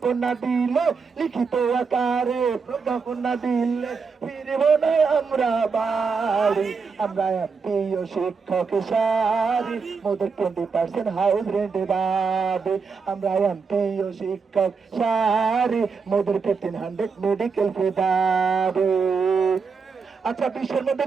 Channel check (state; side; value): quieter; left; 5.2 dB